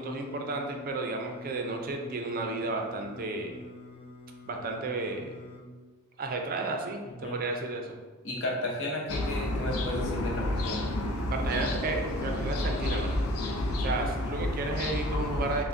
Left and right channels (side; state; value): both; normal; correlation 0.39